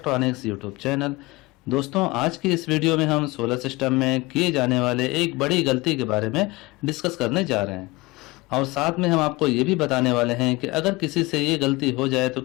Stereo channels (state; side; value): quieter; right; 22.7 dB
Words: यूट्यूब चैनल। दोस्तों, आज की इस वीडियो में हम सोलर सिस्टम में किए जाने वाले एक बड़ी गलती के बारे में डिस्कस करने जा रहे हैं और साथ में हम आपको ये भी बताने वाले हैं कि अगर किसी से ये गलती हो जाए तो